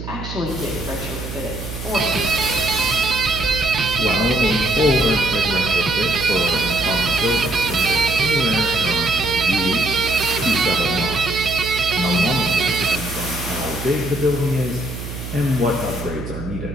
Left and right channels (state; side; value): noise; right; hum, 9 dB below the sound